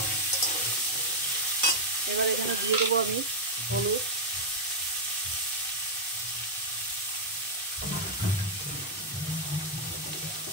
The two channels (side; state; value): both; normal; correlation -0.04